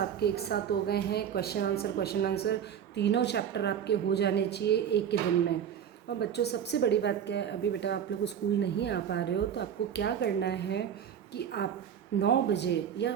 एक साथ हो गए हैं, क्वेश्चन आंसर, तीनों चैप्टर आपके हो जाने चाहिए एक ही दिन में। और बच्चों सबसे बड़ी बात क्या है, अभी बेटा आप लोग स्कूल नहीं आ पा रहे हो तो आपको क्या करना है कि आप 9 बजे या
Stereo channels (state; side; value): quieter; left; 8.7 dB